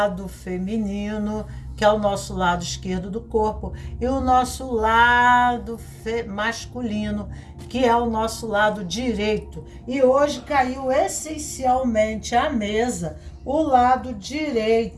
feminino, que é o nosso lado esquerdo do corpo, e o nosso lado masculino, que é o nosso lado direito. E hoje caiu essencialmente à mesa o lado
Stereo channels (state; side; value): identical; both; correlation 1.00